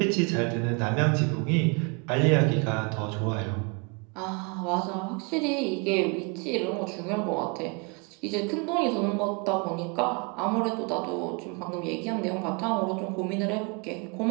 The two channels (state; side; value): quieter; left; 32.3 dB